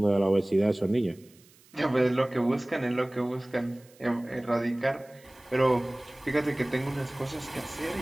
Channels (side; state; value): right; noise; hiss, 28 dB below the sound